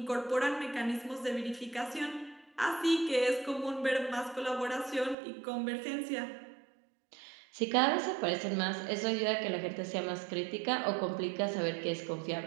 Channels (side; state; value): left; drops out; at 5.2 s